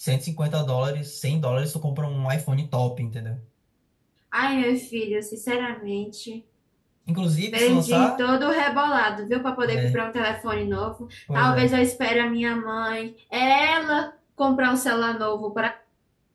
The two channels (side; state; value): both; identical; correlation 1.00